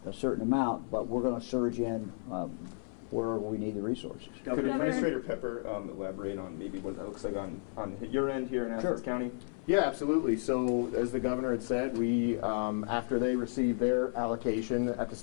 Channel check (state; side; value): silent; right; 56 dB below the other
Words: a certain amount, but we're going to surge in where we need the resources. Could Administrator Pepper elaborate on maybe what that looks like on your end here in Athens County? Yeah, absolutely. So as the governor had said, we after they received their allocation at the